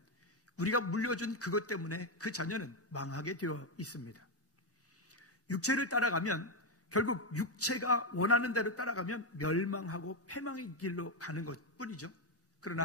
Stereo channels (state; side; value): normal; both; correlation 0.06